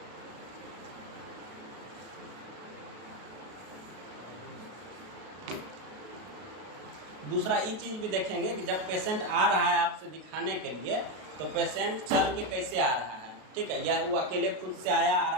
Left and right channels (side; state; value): left; late; 33 ms